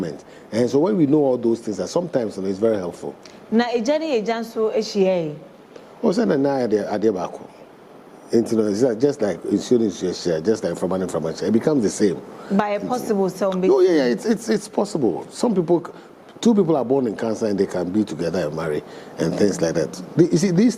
And so when we know all those things, sometimes it's very helpful. Na ejani ejanso ehie. O say na ade baako. Just like insurance share, just like from share, it becomes the same. By a possible some. Oh yeah, it's possible. Some people two people are born in Cancer and they can be together and marry and things like that. You see, this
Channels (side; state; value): both; identical; correlation 1.00